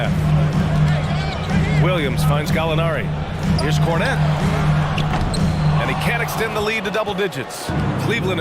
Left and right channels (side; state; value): both; identical; correlation 1.00